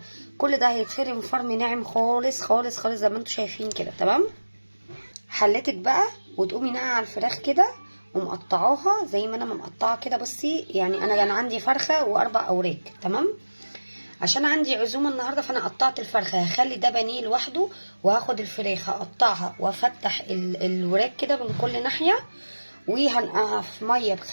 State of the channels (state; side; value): inverted; both; correlation -1.00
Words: كل ده هيتفرم فرم ناعم خالص خالص خالص زي ما انتم شايفين كده. تمام. حلتك بقى وتقومي ناقعه على الفراخ كده ومقطعاها زي ما انا مقطعه كده. بصي يعني انا كان عندي فرخه واربع اوراق. تمام. عشان عندي عزومه النهارده فانا قطعت الفرخه، هخلي ده بانيه لوحده، وهاخد الفراخ هقطعها وافتح الوراك كده من كل ناحيه، وهنقعها في ميه